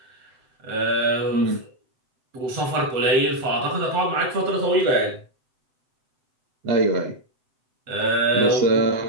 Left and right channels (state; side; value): late; left; 7.8 ms